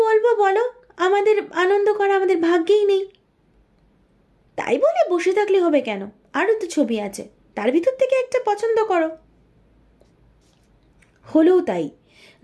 বলবো বলো, আমাদের আনন্দ করা আমাদের ভাগ্যেই নেই। তাই বলে বসে থাকলে হবে কেন? আরও তো ছবি আছে, তার ভিতর থেকে একটা পছন্দ করো। হলেও তাই।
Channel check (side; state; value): both; identical; correlation 1.00